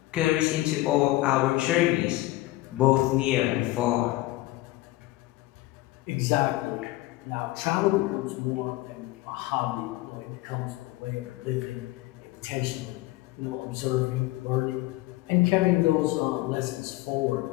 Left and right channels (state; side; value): quieter; right; 18.1 dB